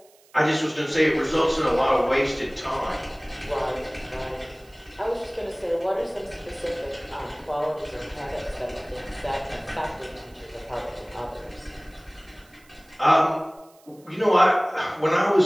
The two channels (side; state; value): right; noise; hiss, 29 dB below the sound